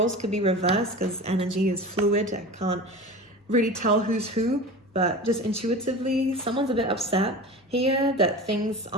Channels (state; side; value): normal; both; correlation 0.33